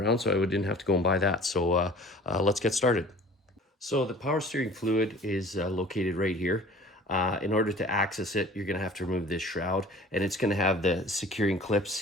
so I didn't have to go and buy that. So let's get started. So the power steering fluid is located right here. In order to access it, you're going to have to remove this shroud, and it's going to have the securing clips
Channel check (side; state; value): both; normal; correlation 0.47